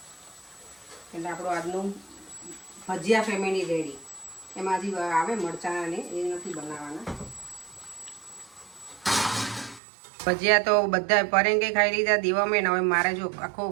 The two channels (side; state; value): left; drops out; at 9.8 s